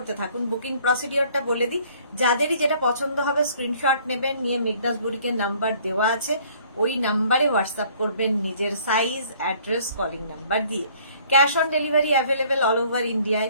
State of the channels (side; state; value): both; inverted; correlation -0.58